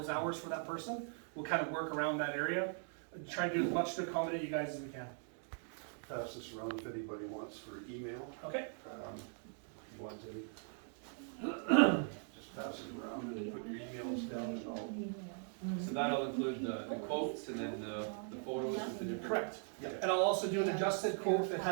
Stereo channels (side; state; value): left; silent; 51 dB below the other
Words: hours for that person. We'll kind of work around that area, try and do as much to accommodate you guys as we can. Pass this around if anybody wants for email. Okay? You want to, just pass it around and put your emails down and all. So that'll include the quotes and then the photos with the different. Correct. And I'll also do an adjusted quote that